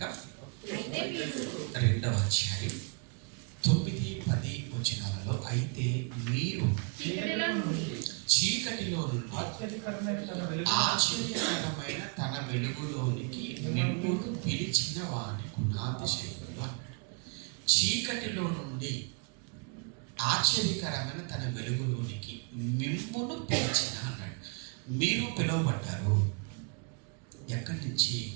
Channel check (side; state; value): left; quieter; 36.3 dB